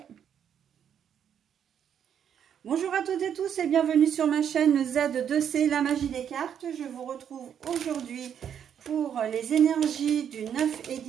Bonjour à toutes et tous et bienvenue sur ma chaîne Z2C, la magie des cartes. Je vous retrouve aujourd'hui pour les énergies du 9 et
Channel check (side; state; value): left; quieter; 8.7 dB